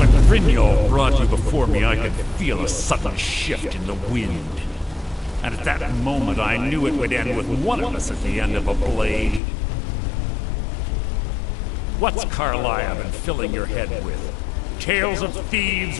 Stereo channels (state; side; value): drops out; right; at 9.4 s